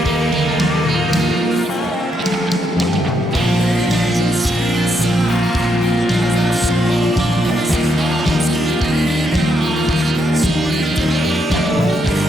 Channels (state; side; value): normal; both; correlation 0.78